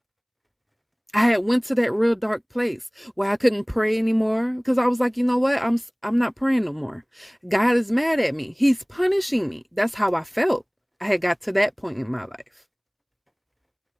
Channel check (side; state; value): both; identical; correlation 1.00